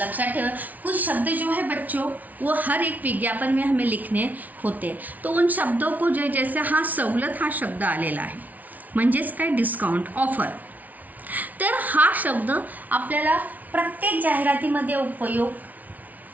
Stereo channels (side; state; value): left; late; 0.075 ms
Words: ठेवा। कुछ शब्द जो है बच्चों वो हर एक विज्ञापन में हमें लिखने होते हैं, तो उन शब्दों को जो जैसे हा सवलत हा शब्द आलेला आहे, म्हणजेच काय, डिस्काउंट, ऑफर, तर हा शब्द आपल्याला प्रत्येक जाहिरातीमध्ये उपयोग,